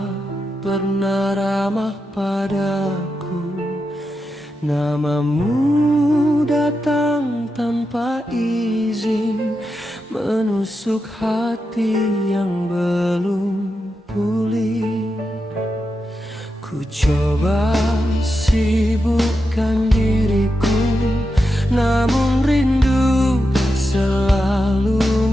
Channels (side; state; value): both; normal; correlation 0.88